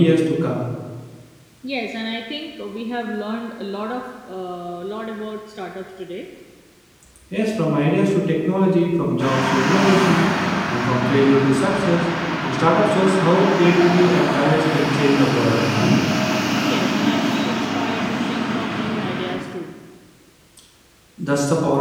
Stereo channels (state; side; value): identical; both; correlation 1.00